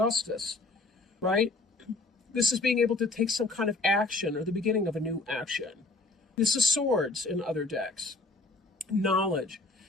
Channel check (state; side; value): quieter; right; 3.2 dB